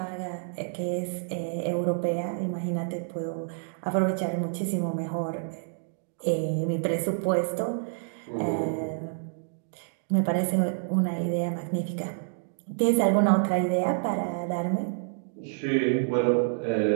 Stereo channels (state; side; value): silent; left; digital silence